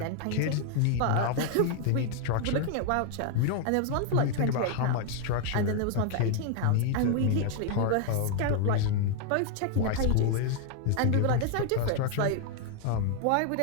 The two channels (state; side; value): different; both; correlation 0.00